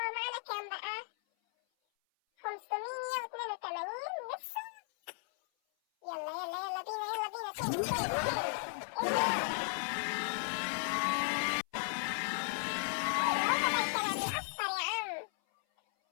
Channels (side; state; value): right; silent; 54 dB below the other